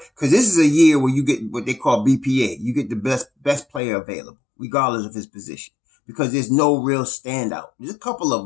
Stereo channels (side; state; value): right; drops out; at 3.8 s